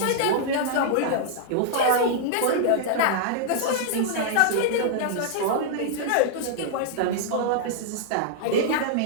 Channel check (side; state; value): both; different; correlation -0.01